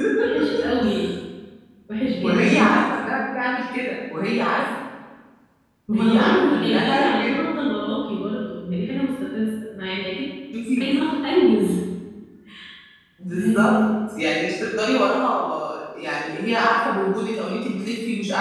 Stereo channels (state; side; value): identical; both; correlation 1.00